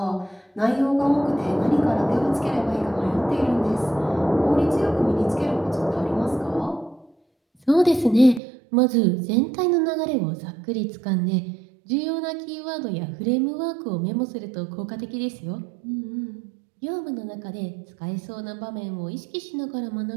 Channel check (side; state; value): left; drops out; at 8.4 s